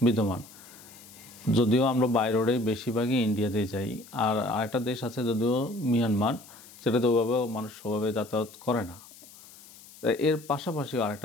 বিদ্যমান। যদিও আমরা বাই রোডে বেশিরভাগই ইন্ডিয়াতেই যাই, আর আরেকটা দেশ আছে যদিও মিয়ানমার, যেটাতে ওইভাবে মানুষ ওভাবে যাতায়াত করে না। এর পাশাপাশিও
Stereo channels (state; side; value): noise; left; hiss, 21 dB below the sound